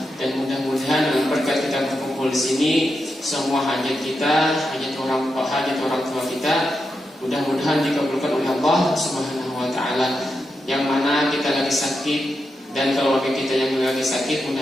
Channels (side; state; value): both; normal; correlation 0.87